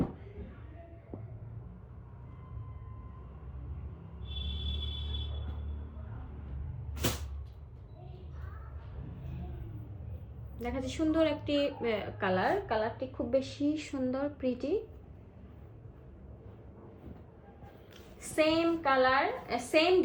দেখা যাচ্ছে সুন্দর একটি কালারটি খুব বেশি সুন্দর, pretty. Same colour, same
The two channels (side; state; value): both; identical; correlation 1.00